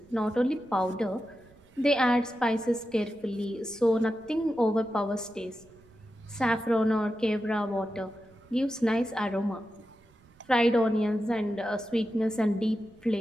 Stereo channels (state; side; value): noise; right; rumble, 28 dB below the sound